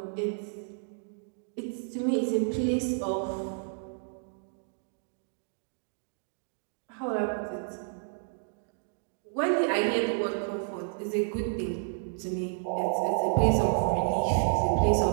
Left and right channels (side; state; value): left; silent; digital silence